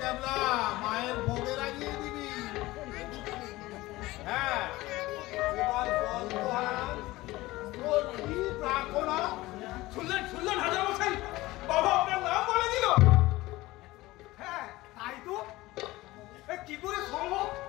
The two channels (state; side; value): quieter; right; 18.8 dB